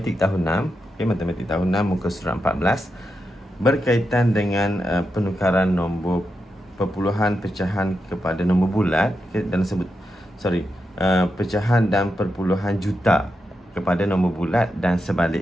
tahun 6. Okey, Matematik tahun 6 muka surat 14 berkaitan dengan penukaran nombor perpuluhan pecahan kepada nombor bulat, okay, dan pecahan dan perpuluhan juta kepada nombor bulat dan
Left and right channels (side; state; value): both; normal; correlation 0.87